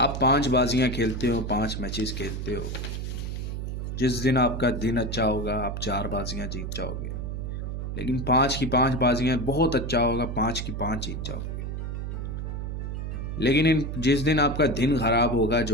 5 बाजियां खेलते हो, 5 मैचेस खेलते हो, जिस दिन आपका दिन अच्छा होगा आप 4 बाजियां जीत जाओगे, लेकिन 5 की 5 बाजियां बहुत अच्छा होगा, 5 की 5 जीत जाओगे। लेकिन जिस दिन आपका दिन खराब होगा,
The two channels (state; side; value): noise; right; hum, 4 dB below the sound